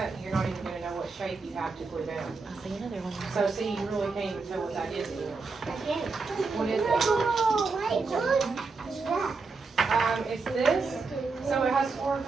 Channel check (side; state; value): left; quieter; 4.2 dB